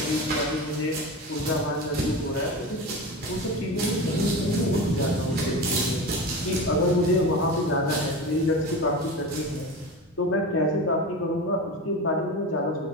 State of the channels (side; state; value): both; normal; correlation 0.27